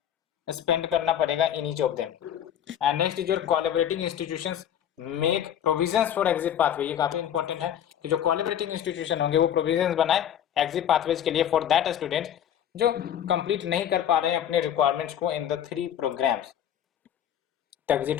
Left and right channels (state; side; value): quieter; right; 10.0 dB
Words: स्पेंड करना पड़ेगा in each of them. And next is your collaborating institutions make provisions for exit pathway, ये काफी इंपॉर्टेंट है कि जो कोलैबोरेटिंग इंस्टीट्यूशन होंगे वो प्रोविजंस बनाए एग्जिट पाथवेज के लिए फॉर दैट स्टूडेंट्स जो कंप्लीट नहीं कर पा रहे हैं अपने रिक्वायरमेंट्स को इन द 3 प्रोग्राम्स,